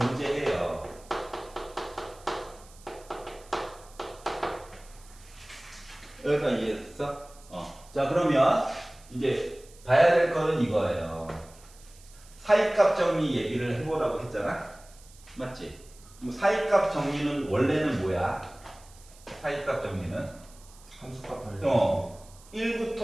여기까지 이해했어? 자, 그러면 이제 봐야 될 거는 이거예요. 사이값 정리 얘기를 해보라고 했잖아? 맞지? 사이값 정리는 원래는 뭐야? 사이값 정리는? 함수값 하는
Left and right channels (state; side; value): noise; right; hiss, 24 dB below the sound